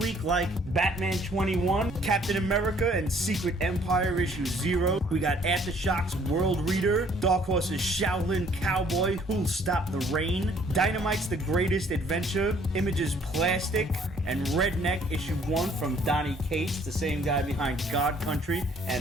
like Batman 21, Captain America and Secret Empire issue 0. We got Aftershock's World Reader, Dark Horse's Shaolin Cowboy, Who'll Stop the Rain, Dynamite's The Greatest Adventure, Image's Plastic, and Redneck issue 1 from Donny Cates, the same guy behind God Country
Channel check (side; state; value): both; normal; correlation 0.60